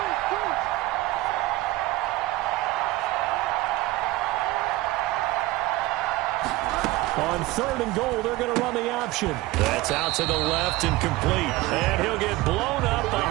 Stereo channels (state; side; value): quieter; left; 18.6 dB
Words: On 3rd and goal, they're going to run the option. That's out to the left and complete. And he'll get blown up